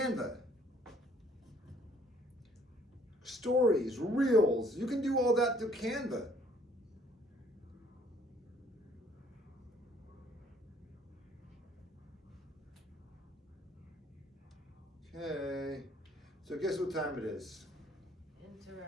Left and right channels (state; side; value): normal; both; correlation 0.61